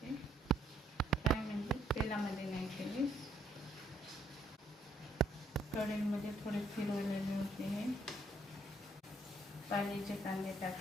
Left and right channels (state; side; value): normal; both; correlation 0.70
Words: फ्राय म्हणजे तेलामध्ये नाही केले, कढईमध्ये थोडे फिरवलेले होते. हे पाण्याचे कांदे